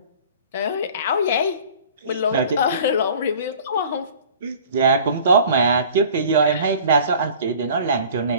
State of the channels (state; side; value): inverted; both; correlation -0.47